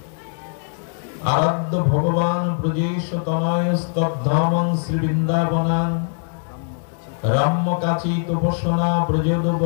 আরাধ্য ভগবান ব্রজেশ তনয়স্তদ্ধামং শ্রী বৃন্দাবনাং রাম্যকাচি তপস্বনা ব্রজোদ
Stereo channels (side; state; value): right; silent; 65 dB below the other